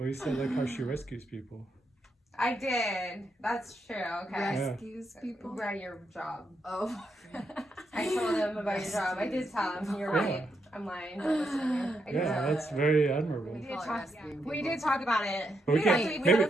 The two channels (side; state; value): both; normal; correlation 0.81